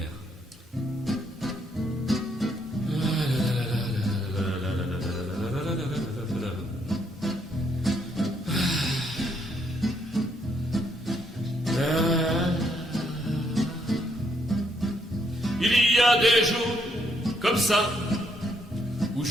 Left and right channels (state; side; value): normal; both; correlation 0.73